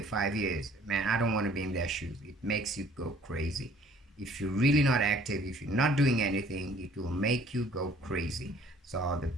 5 years. Man, I don't want to be in their shoes. It makes you go crazy. If you're really not active, if you're not doing anything, it will make you go crazy. So the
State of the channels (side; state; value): both; normal; correlation 0.56